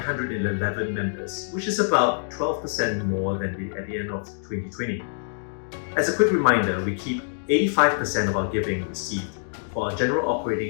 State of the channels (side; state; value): right; silent; digital silence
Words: members, which is about 12% more than at the end of 2020. As a quick reminder, we keep 85% of our giving received for our general